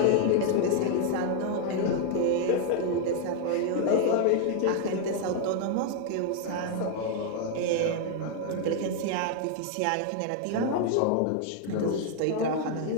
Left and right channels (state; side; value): different; both; correlation 0.00